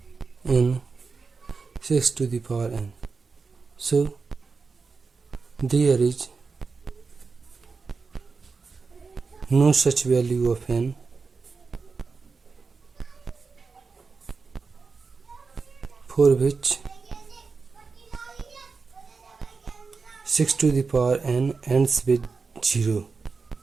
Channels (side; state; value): left; quieter; 4.6 dB